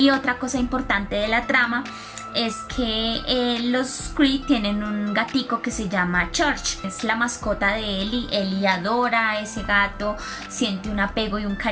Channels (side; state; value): both; identical; correlation 1.00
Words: otra cosa importante de la trama es que los Creed tienen un gatico que se llama Church. Es la mascota de Ellie. Ellie adora a ese gato, siente un apego y un